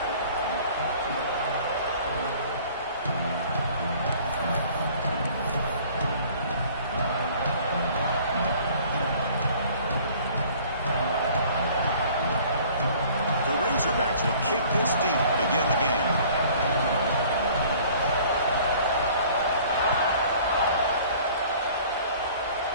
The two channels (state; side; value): inverted; both; correlation -0.52